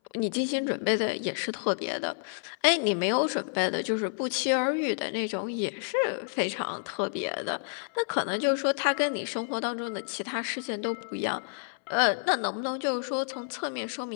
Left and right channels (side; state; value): right; silent; 58 dB below the other